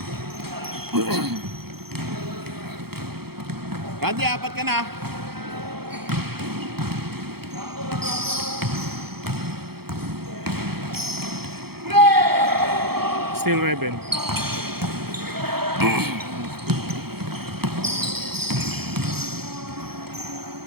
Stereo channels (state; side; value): late; left; 0.96 ms